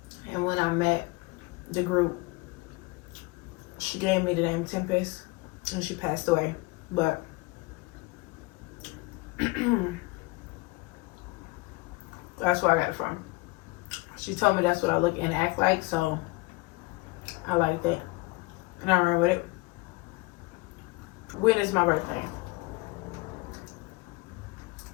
And when I met the group, she gave me the name Tempest, and she passed away. But that's where I got it from. She told me that's what I look and act like, so I like that. And I ran with it. When is my birthday?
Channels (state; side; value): quieter; right; 24.3 dB